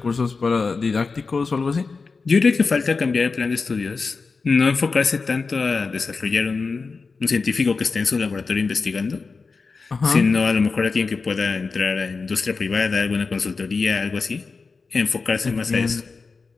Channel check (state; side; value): quieter; right; 4.4 dB